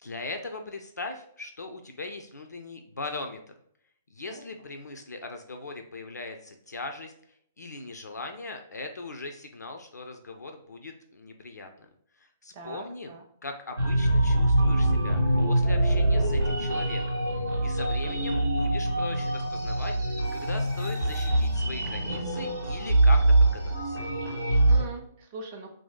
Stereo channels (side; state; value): both; inverted; correlation -0.83